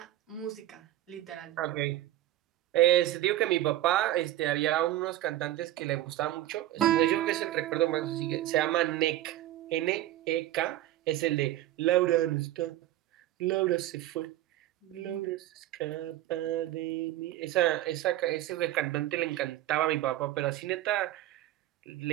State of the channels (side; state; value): left; quieter; 14.4 dB